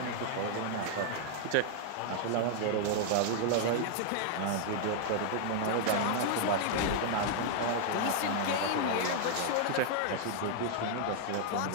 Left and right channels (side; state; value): both; different; correlation 0.00